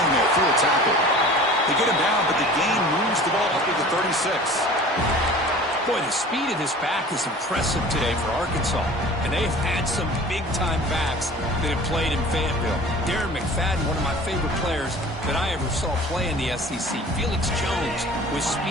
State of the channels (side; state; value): both; normal; correlation 0.43